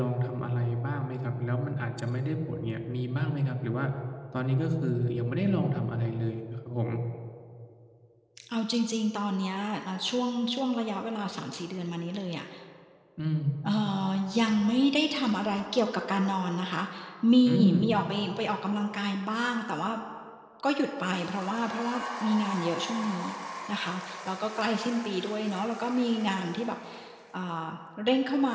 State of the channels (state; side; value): identical; both; correlation 1.00